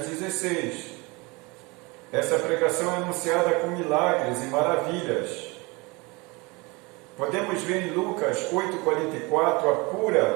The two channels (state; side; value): quieter; left; 26.0 dB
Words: Essa pregação é anunciada com milagres e maravilhas. Podemos ver em Lucas 8,44 a